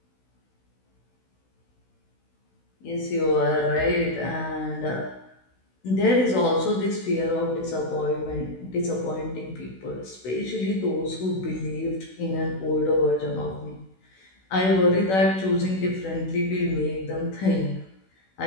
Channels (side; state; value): right; late; 16 ms